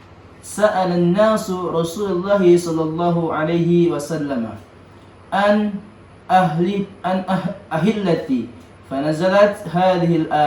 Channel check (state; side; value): identical; both; correlation 1.00